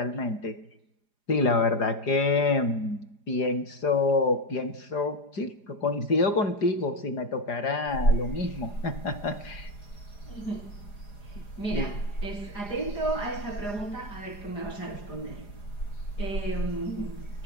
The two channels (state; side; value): late; right; 4.9 ms